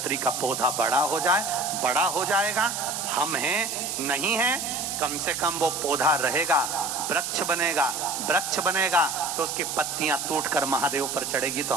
का पौधा बड़ा हो जाए। बड़ा हो जाएगा, हम हैं नहीं हैं, कम से कम वो पौधा रहेगा, वृक्ष बनेगा। वृक्ष बनेगा तो उसकी पत्तियां टूटकर महादेव पर चढ़ेगी, तो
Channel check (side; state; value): right; noise; hiss, 4 dB below the sound